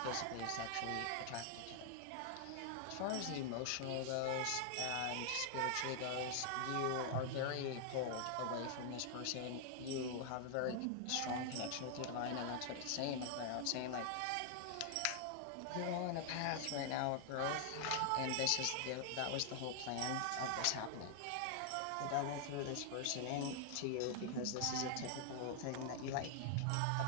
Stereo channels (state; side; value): different; both; correlation 0.00